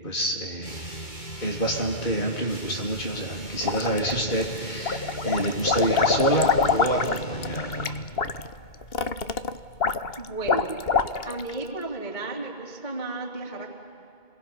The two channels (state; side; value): late; right; 2.2 ms